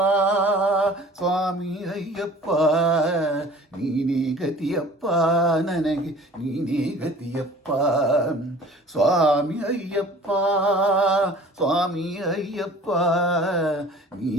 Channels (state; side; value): normal; both; correlation 0.46